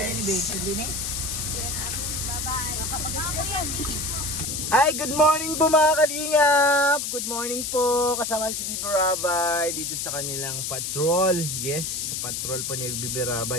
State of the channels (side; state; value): left; noise; hiss, 3 dB below the sound